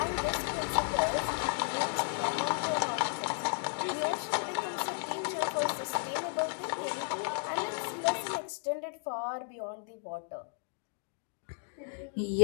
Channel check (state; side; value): silent; right; 55 dB below the other